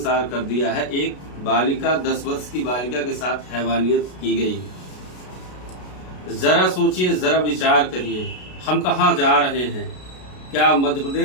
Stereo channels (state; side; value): late; right; 33 ms